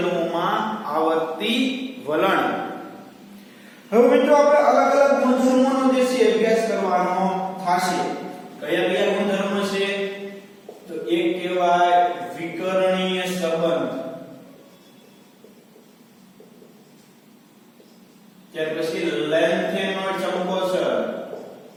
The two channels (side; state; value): both; identical; correlation 1.00